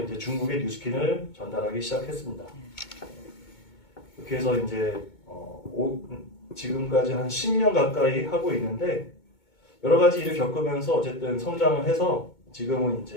중국의 뉴스킨을 전달하기 시작했습니다. 그렇게 해서 이제 지금까지 한 10년 가까이 하고 있는데 여러 가지 일을 겪으면서 어쨌든 성장을 해서 지금은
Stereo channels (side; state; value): right; late; 2.2 ms